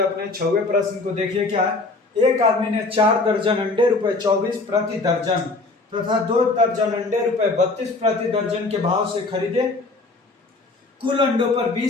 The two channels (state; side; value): quieter; right; 3.4 dB